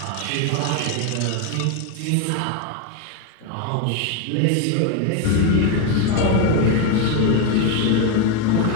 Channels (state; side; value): different; both; correlation 0.02